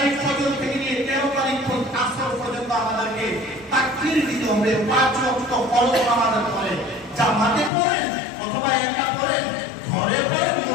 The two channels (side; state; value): right; drops out; at 7.7 s